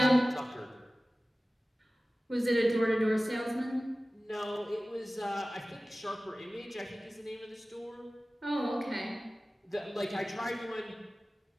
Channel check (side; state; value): both; normal; correlation 0.97